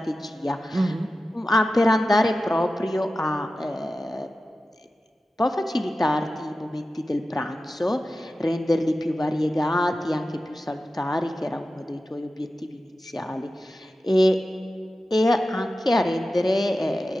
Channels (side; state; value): both; normal; correlation 0.93